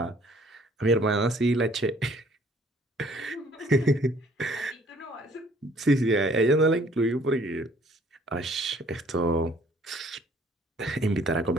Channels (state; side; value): normal; both; correlation 0.59